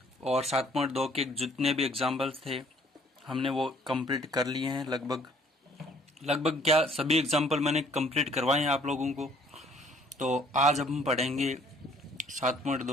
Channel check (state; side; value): normal; both; correlation 0.59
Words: और 7.2 के जितने भी एग्जाम्पल्स थे हमने वो कंप्लीट कर लिए हैं। लगभग क्या सभी एग्जाम्पल मैंने कंप्लीट करवाए हैं आप लोगों को। तो आज हम पढ़ेंगे